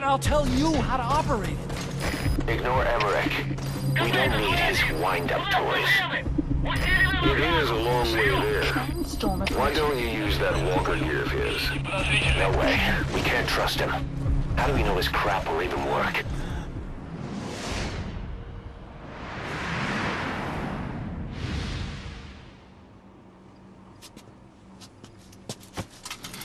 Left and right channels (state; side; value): identical; both; correlation 1.00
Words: I'll tell you how to operate it. Ignore Emmerich. We don't need his wind-up toys. It is a long way there. Why don't you use that walker gear of his? No way. We can't trust him. How do we know his crap will even work?